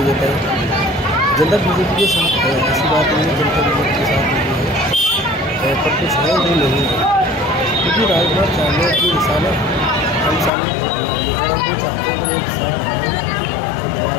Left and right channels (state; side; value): drops out; right; at 10.5 s